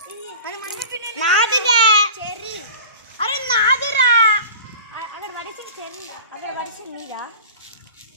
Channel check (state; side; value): inverted; both; correlation -0.38